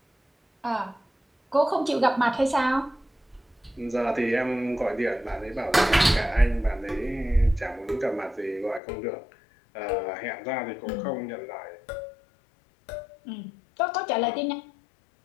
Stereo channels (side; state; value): right; drops out; at 8.8 s